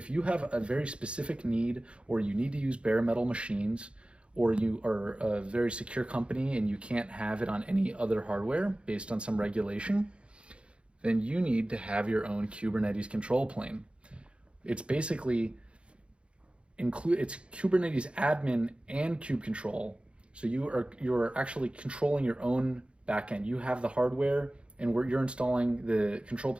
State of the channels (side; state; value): left; late; 0.058 ms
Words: you have a very specific need, or you need to use bare metal machines, or you are a very secure company and you can't have it on any other hardware based on some regulation, then you need to have your own Kubernetes control plane. It's basically it's Kubernetes admin and kube control. So you're actually controlling your own backend. You have the hardware and you're installing the control